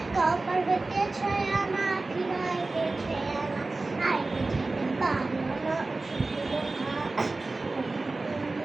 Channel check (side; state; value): left; quieter; 3.3 dB